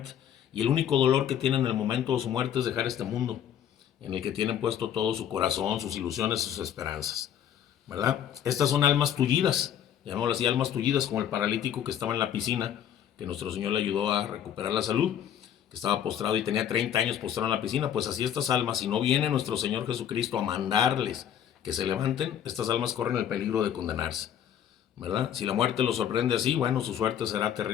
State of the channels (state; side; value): quieter; right; 9.8 dB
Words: Y el único dolor que tienen en el momento de su muerte es dejar este mundo, en el que tienen puesto todo su corazón, sus ilusiones, sus esperanzas, ¿verdad? Estas son almas tullidas, llamémoslo así, almas tullidas, como el paralítico que estaba en la piscina, que nuestro Señor le ayudó a recuperar la salud, que estaba postrado y tenía 30 años postrado en la piscina. Pues así estas almas, si no viene nuestro Señor Jesucristo a mandarles que se levanten, estas almas corren el peligro de condenarse, ¿verdad? Si la muerte los sorprende así, bueno, su suerte será